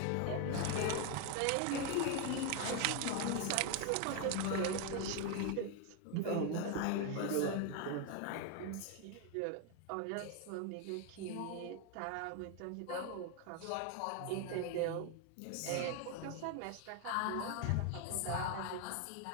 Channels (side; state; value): both; different; correlation 0.01